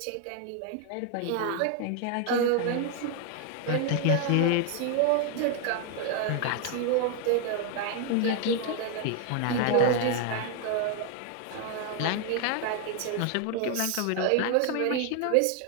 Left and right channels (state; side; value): different; both; correlation 0.00